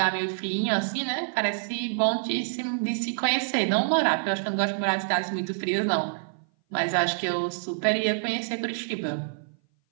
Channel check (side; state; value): left; silent; 57 dB below the other